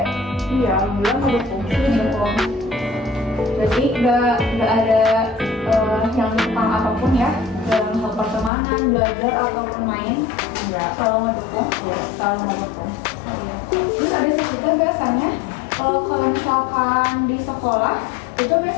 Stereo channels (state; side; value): drops out; right; at 8.5 s